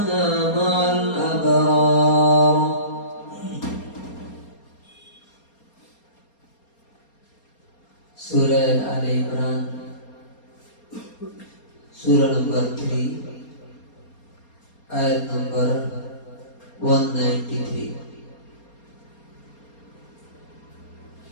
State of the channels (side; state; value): right; late; 4.3 ms